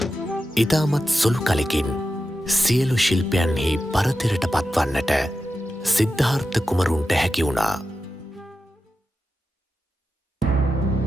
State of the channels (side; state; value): both; normal; correlation 0.91